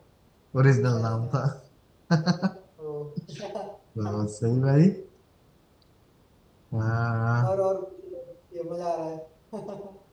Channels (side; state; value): both; identical; correlation 1.00